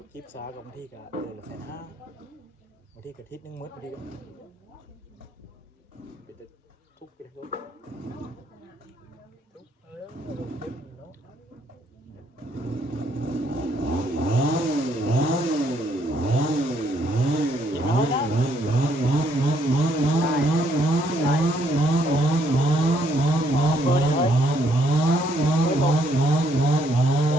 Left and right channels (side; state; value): both; normal; correlation 0.70